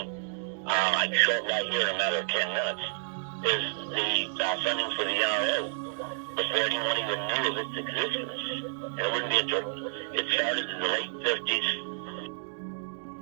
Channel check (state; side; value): silent; left; digital silence